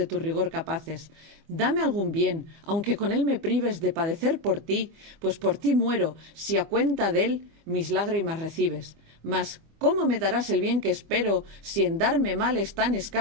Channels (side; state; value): left; late; 24 ms